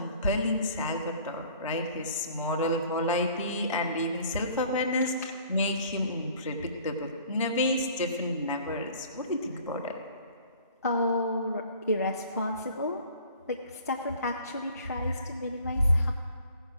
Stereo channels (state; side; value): inverted; both; correlation -0.52